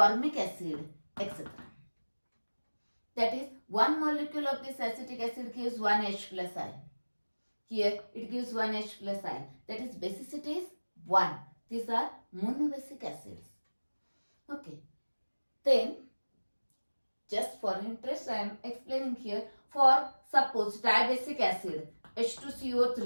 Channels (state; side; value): inverted; both; correlation -1.00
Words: acid, etc. That is, one molecule of this acetic acid gives 1 H plus ion. Here it gives 1 H plus ion. That is, basicity is 1. These are monobasic acids. Okay. Then, just for interest, I am explaining here. For suppose dibasic acid